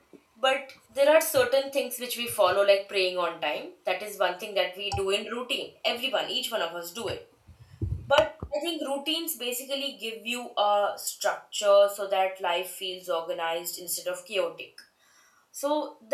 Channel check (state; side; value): identical; both; correlation 1.00